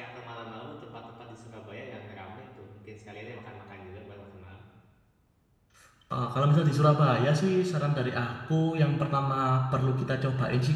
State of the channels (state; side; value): identical; both; correlation 1.00